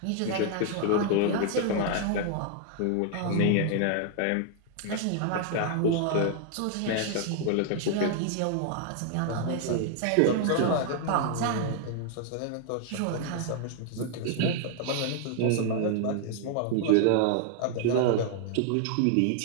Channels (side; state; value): both; different; correlation 0.00